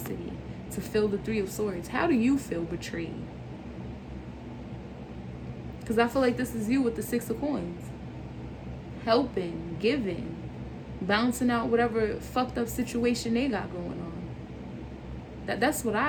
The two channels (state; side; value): identical; both; correlation 1.00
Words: to feel the 3 of Swords. How do you feel betrayed? Because I feel like this is you with the 6 of Coins. Helping, giving, bouncing out whatever fucked up situation they got going on. That's what